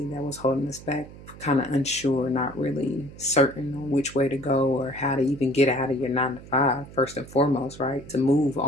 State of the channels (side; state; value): right; noise; hum, 17 dB below the sound